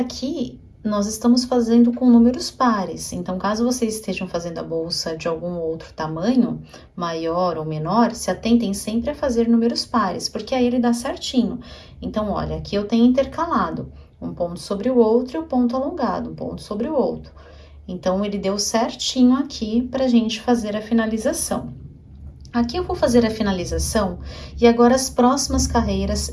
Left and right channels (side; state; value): both; identical; correlation 1.00